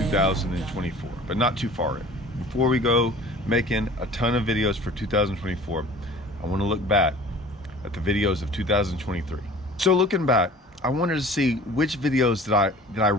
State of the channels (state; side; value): normal; both; correlation 0.45